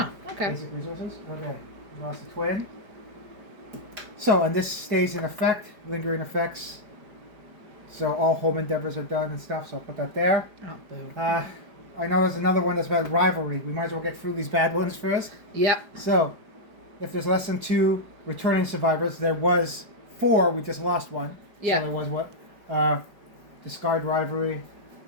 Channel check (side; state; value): left; late; 4.9 ms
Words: okay. Basic resources. Okay. We lost a twin. So, and this stays in effect, lingering effects. So all home endeavors are done and stuff. So I'll put that there. Oh, boo. I know there's another one that's about rivalry. We might as well get through these bad ones first. Yep. So, if there's less than 2 returning survivors, there was 4. We just lost 1. Yeah. So there was what? Discard rivalry.